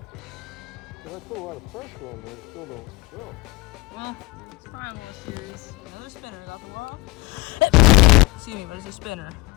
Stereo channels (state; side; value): quieter; right; 22.9 dB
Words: I put a lot of pressure on there, it still don't go. well, it's fine, little series. Another spinner got the world. Excuse me, but it's a spinner.